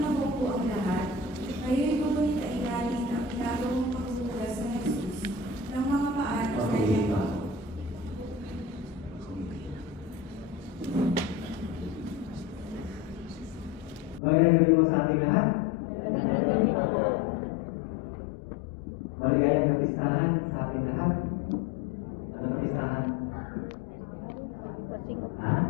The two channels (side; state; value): right; drops out; at 14.2 s